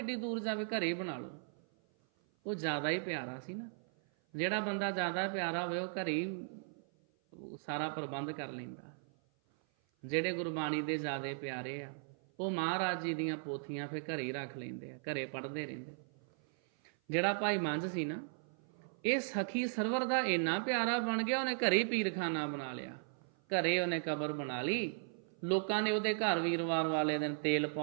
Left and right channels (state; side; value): silent; left; 53 dB below the other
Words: ਦੂਰ ਜਾਵੇ, ਘਰੇ ਬਣਾ ਲਓ। ਉਹ ਜ਼ਿਆਦਾ ਹੀ ਪਿਆਰਾ ਸੀ ਨਾ। ਜਿਹੜਾ ਬੰਦਾ ਜ਼ਿਆਦਾ ਪਿਆਰਾ ਹੋਵੇ ਉਹ ਘਰੇ ਹੀ ਸਾਰਾ ਪ੍ਰਬੰਧ ਕਰ ਲੈਂਦਾ। ਜਿਹੜੇ ਗੁਰਬਾਣੀ ਦੇ ਜ਼ਿਆਦਾ ਪਿਆਰੇ ਆ ਉਹ ਮਹਾਰਾਜ ਜੀ ਦੀਆਂ ਪੋਥੀਆਂ ਫਿਰ ਘਰੇ ਹੀ ਰੱਖ ਲੈਂਦੇ ਆ, ਘਰੇ ਪੜ੍ਹਦੇ ਰਹਿੰਦੇ। ਜਿਹੜਾ ਭਾਈ ਮੰਝ ਸੀ ਨਾ, ਇਹ ਸਖੀ ਸਰਵਰ ਦਾ ਇੰਨਾ ਪਿਆਰਾ ਬਣ ਗਿਆ, ਉਹਨੇ ਘਰੇ ਹੀ ਪੀਰਖਾਨਾ ਬਣਾ ਲਿਆ। ਘਰੇ ਉਹਨੇ ਕਬਰ ਬਣਾ ਲਈ। ਲੋਕਾਂ ਨੇ ਉਹਦੇ ਘਰ ਵੀਰਵਾਰ ਵਾਲੇ ਦਿਨ ਤੇਲ